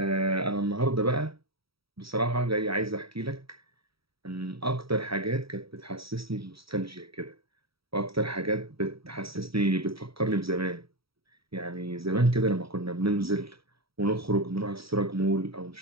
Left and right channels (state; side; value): late; left; 0.75 ms